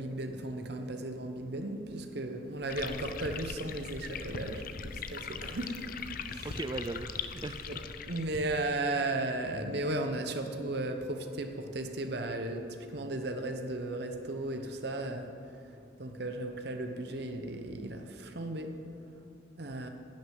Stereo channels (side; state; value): both; normal; correlation 0.29